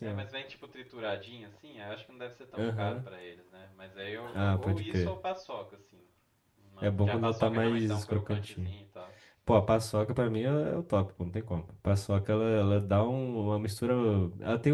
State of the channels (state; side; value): identical; both; correlation 1.00